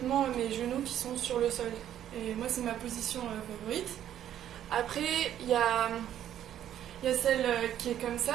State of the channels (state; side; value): quieter; left; 11.0 dB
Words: mes genoux qui sont sur le sol. Et moi, c'est ma position favorite. Après, il y a celle qui est comme